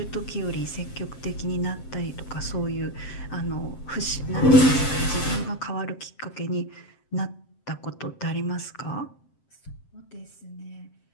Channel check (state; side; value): late; right; 7.7 ms